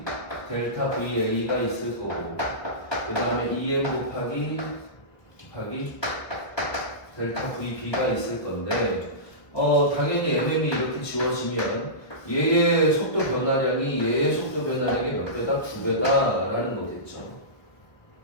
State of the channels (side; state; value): right; late; 1.1 ms